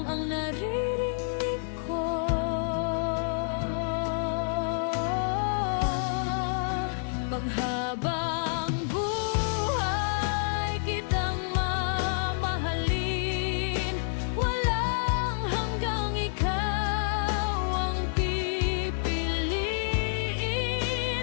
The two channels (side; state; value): right; silent; digital silence